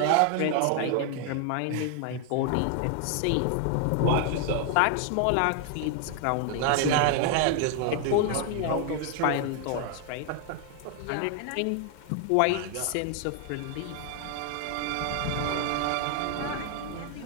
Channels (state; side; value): different; both; correlation 0.00